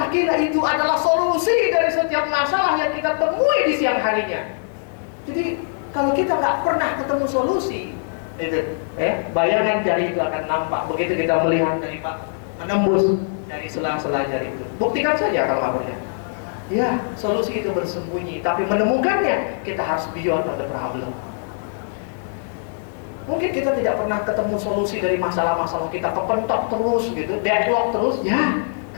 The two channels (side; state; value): right; silent; digital silence